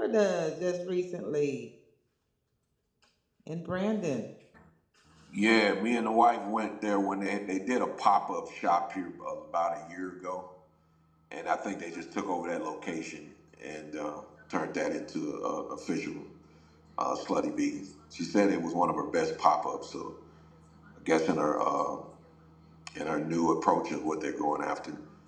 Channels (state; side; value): identical; both; correlation 1.00